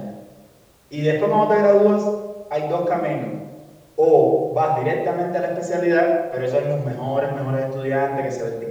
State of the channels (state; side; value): identical; both; correlation 1.00